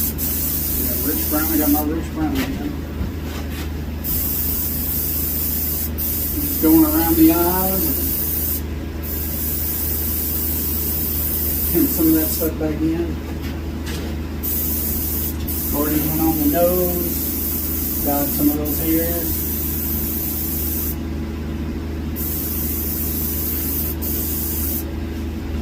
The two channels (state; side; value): identical; both; correlation 1.00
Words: Yeah, rich brown, I got my rich brown again. Just going around the eyes. Getting some of that stuff back in. Already went on the nose. Got some of those hairs.